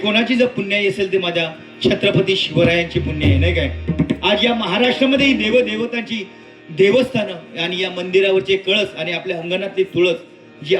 जर पुण्याई असेल ते माझ्या छत्रपती शिवरायांची पुण्य आहे नाही काय. आज या महाराष्ट्रामध्ये देवदेवतांची देवस्थानं आणि या मंदिरावरचे कळस आणि आपल्या अंगणातली तुळस जी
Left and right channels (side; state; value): both; identical; correlation 1.00